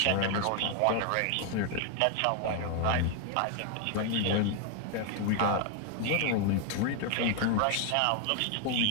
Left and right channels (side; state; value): both; different; correlation 0.00